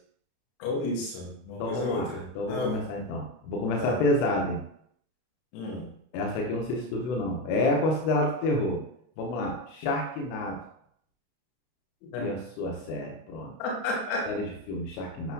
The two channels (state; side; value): late; right; 32 ms